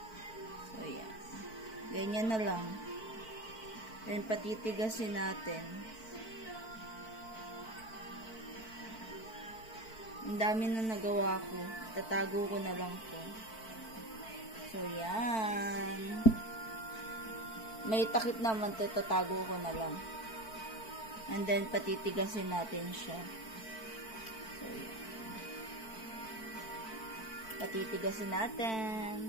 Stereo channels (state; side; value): late; right; 4.5 ms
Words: So, yan. Ganyan na lang. Then, patitigasin natin. Ang dami na nagawa ko. Tatago ko na lang to. So, yan. May takip naman to. Tatago ko na lang. And then, patitigasin natin siya. So, yan. Patitigasin